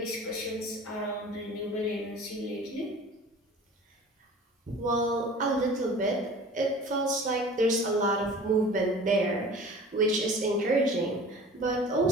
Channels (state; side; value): normal; both; correlation 0.43